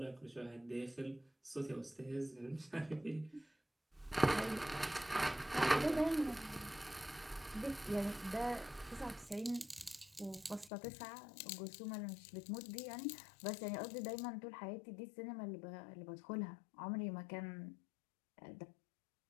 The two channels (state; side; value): drops out; right; at 10.7 s